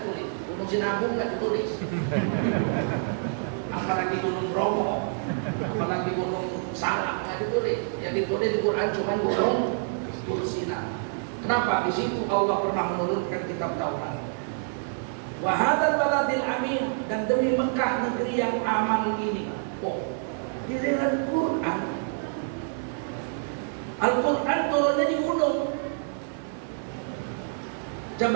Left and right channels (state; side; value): silent; left; 55 dB below the other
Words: gunung Sinabung nggak ditulis. Apalagi gunung Bromo, apalagi gunung Salak nggak ditulis. Yang ditulis di Quran cuma gunung Tursina. Kenapa? Di situ Allah pernah menurunkan kitab Taurat. Wa hadzal baladil amin, dan demi Mekah Mekah negeri yang aman ini? Oh, giliran Quran. Al-Quran turunnya di gunung